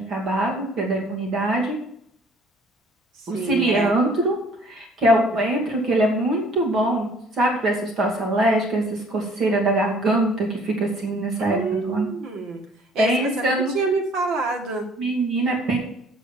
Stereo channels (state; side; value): normal; both; correlation 0.56